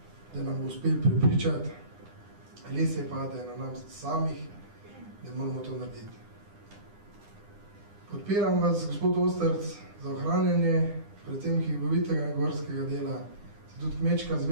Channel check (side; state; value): left; late; 9.9 ms